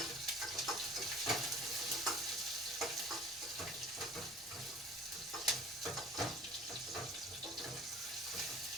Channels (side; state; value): both; normal; correlation 0.46